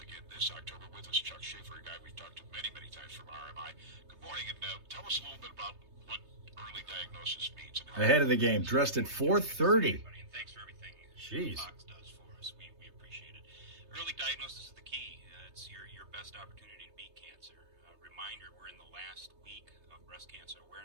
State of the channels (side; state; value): left; late; 3.3 ms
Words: again this October with us. Chuck Schaefer, a guy we've talked to many, many times from RMI. Good morning, and tell us a little bit about what early diagnosis means. And how Ahead of the game, dressed at 4:30. And thanks for everything Jeez. Fox does for us. We appreciate it. Early diagnosis is the key. It's your best opportunity to beat cancer. Reminder, we're in the last week of Breast Cancer